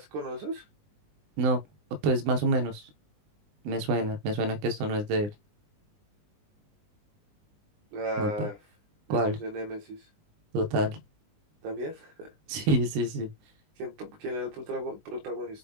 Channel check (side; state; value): left; late; 19 ms